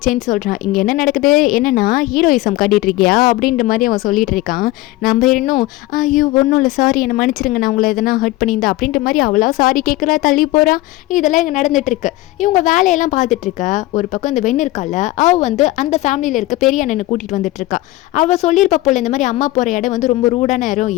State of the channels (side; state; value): right; quieter; 18.2 dB